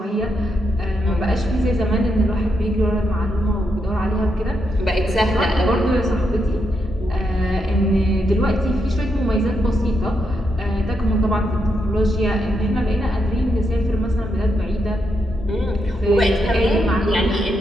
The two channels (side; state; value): both; normal; correlation 0.82